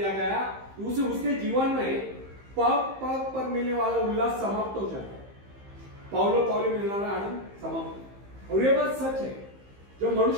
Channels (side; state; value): left; late; 15 ms